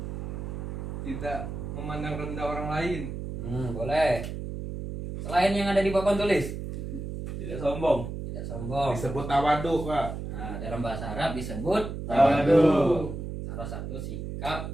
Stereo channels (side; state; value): right; noise; hum, 6 dB below the sound